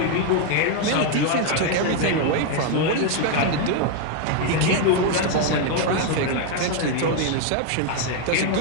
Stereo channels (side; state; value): both; different; correlation 0.01